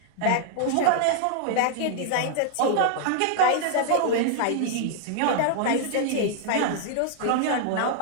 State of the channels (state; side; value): different; both; correlation -0.01